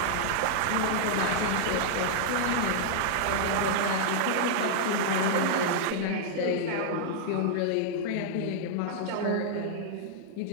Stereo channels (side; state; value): both; different; correlation -0.01